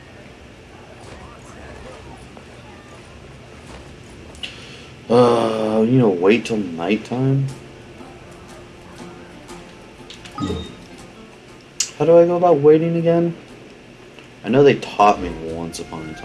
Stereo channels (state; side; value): identical; both; correlation 1.00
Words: Wait till nighttime? How do I go about waiting again? I know they taught me once upon a